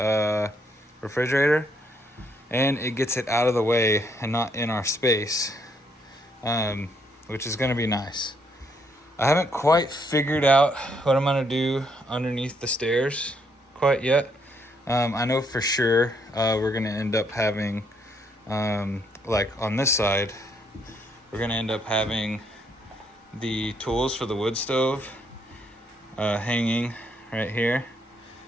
refrigerator, and it gets it out of the way and not in our space, which is going to be nice. I haven't quite figured out what I'm gonna do underneath the stairs quite yet. I know for sure we're gonna end up having, like on this side, we're gonna end up having the tools for the wood stove hanging right here.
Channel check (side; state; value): both; normal; correlation 0.72